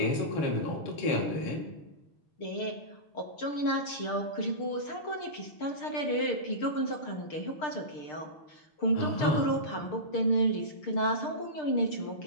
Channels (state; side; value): late; right; 6.6 ms